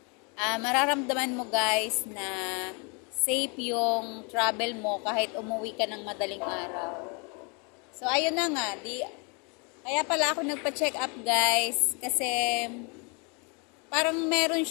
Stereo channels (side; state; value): right; quieter; 33.4 dB